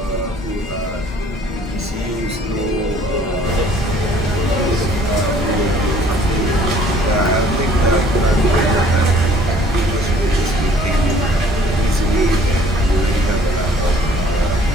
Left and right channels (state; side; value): normal; both; correlation 0.56